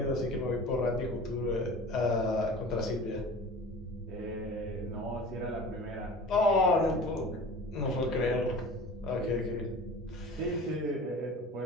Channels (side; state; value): both; normal; correlation 0.39